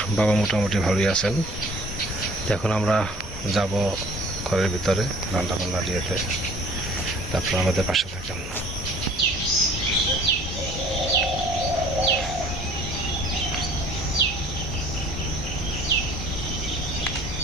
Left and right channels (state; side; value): normal; both; correlation 0.51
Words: বাবা মোটামুটি ভালোই আছেন। এখন আমরা যাব ঘরের ভিতরে রান্না বান্না দিয়েতে, তারপর আমাদের পাশে থাকেন।